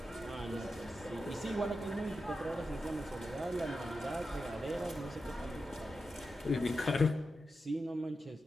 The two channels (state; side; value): normal; both; correlation 0.90